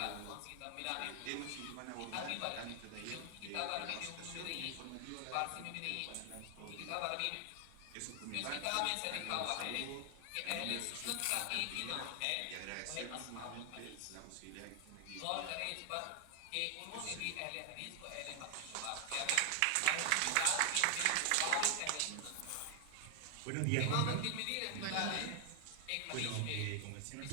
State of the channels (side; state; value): both; different; correlation 0.00